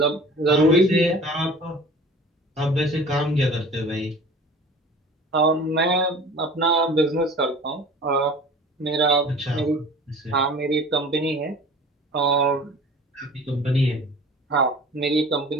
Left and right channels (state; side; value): normal; both; correlation 0.42